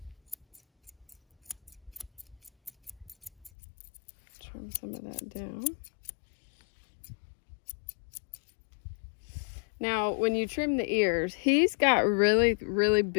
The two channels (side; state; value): right; drops out; at 3.5 s